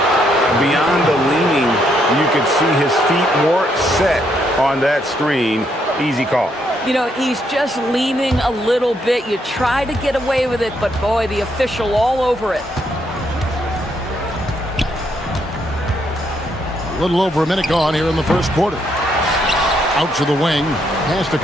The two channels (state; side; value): normal; both; correlation 0.74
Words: Beyond the leaning, you could see his feet weren't set on that screen. Easy call. You know, he's just leaning a little bit. You try to get away with it, but boy, the official all over it. A little over a minute gone here in the first quarter. Out to the wing. Pass to